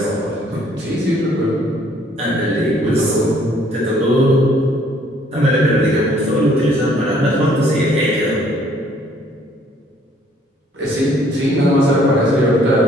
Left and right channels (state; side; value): normal; both; correlation 0.61